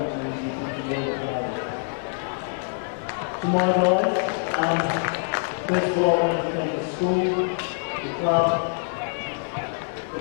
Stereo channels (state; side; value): silent; right; 62 dB below the other